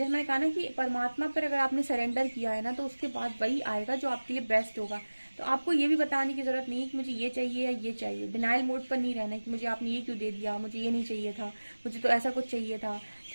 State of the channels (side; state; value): both; inverted; correlation -1.00